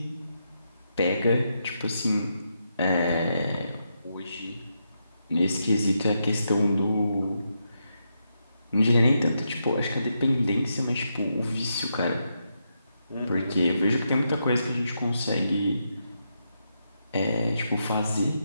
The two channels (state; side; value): inverted; both; correlation -0.83